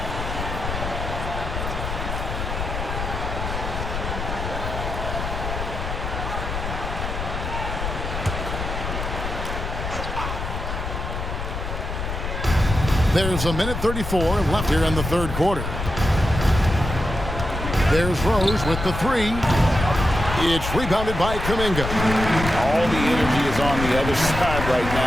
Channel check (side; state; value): left; noise; rumble, 5 dB below the sound